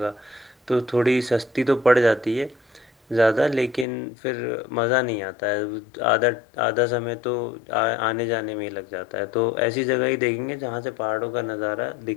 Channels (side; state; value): right; drops out; at 3.9 s